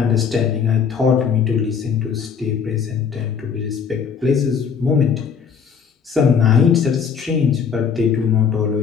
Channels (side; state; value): right; quieter; 6.6 dB